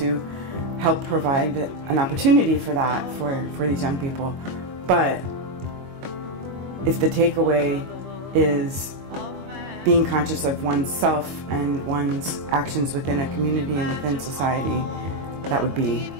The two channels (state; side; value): late; left; 22 ms